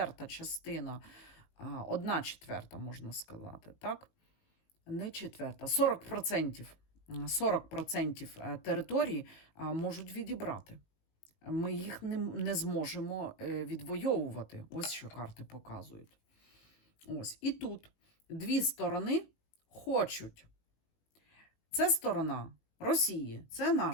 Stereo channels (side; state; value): right; late; 19 ms